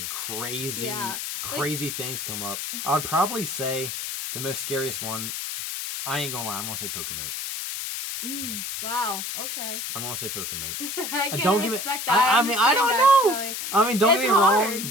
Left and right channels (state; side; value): noise; left; hiss, 5 dB below the sound